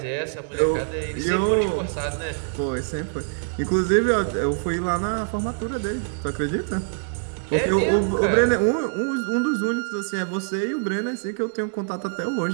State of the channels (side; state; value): left; silent; digital silence